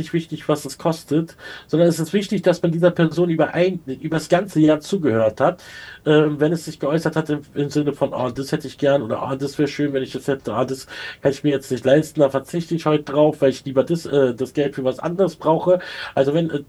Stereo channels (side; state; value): both; identical; correlation 1.00